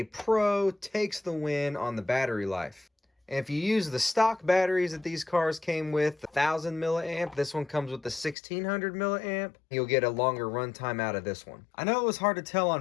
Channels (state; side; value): drops out; right; at 8.3 s